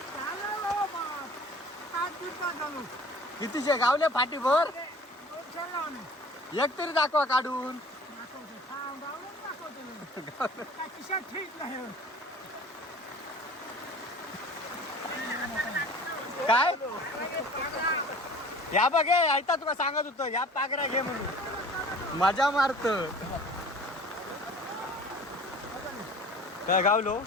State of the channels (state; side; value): normal; both; correlation 0.46